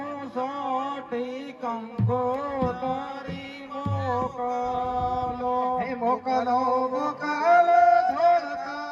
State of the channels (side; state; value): both; identical; correlation 1.00